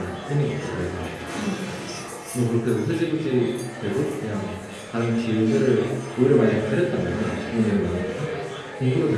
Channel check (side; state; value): both; identical; correlation 1.00